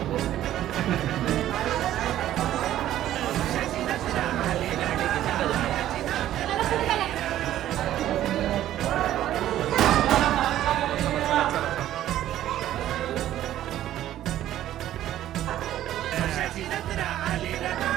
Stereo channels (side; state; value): left; quieter; 12.8 dB